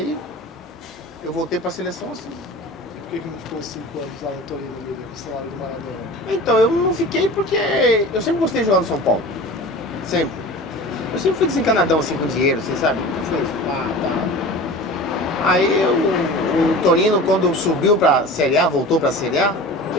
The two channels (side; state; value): both; normal; correlation 0.36